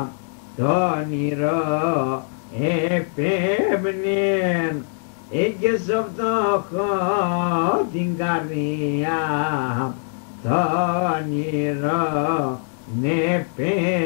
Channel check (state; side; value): silent; right; digital silence